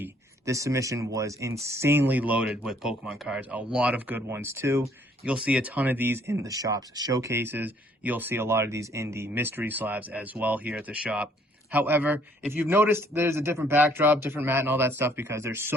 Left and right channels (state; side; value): normal; both; correlation 0.63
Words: This submission was insanely loaded with Pokemon cards. A lot of good ones too. You'll see a ton of these in the shop's showcases. You'll see a lot of these in the mystery slabs as well here at the shop. However, if you've noticed, there's a different backdrop, different mat and all that stuff because there's